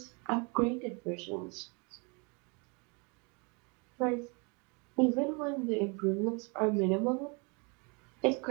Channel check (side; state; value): left; quieter; 31.9 dB